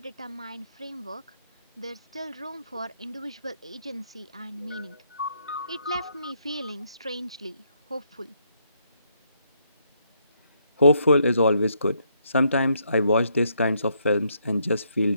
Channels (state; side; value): inverted; both; correlation -0.74